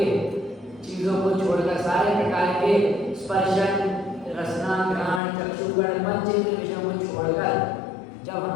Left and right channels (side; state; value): right; drops out; at 5.2 s